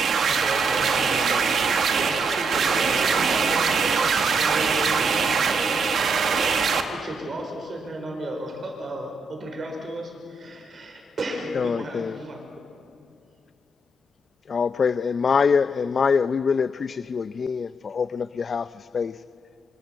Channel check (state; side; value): normal; both; correlation 0.78